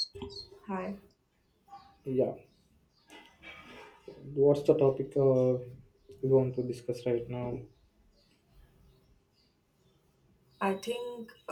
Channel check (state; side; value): identical; both; correlation 1.00